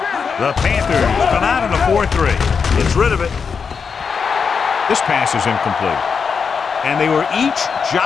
The Panthers come out in a 4-3. Gets rid of it. This pass is incomplete. And they were each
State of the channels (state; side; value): quieter; right; 5.9 dB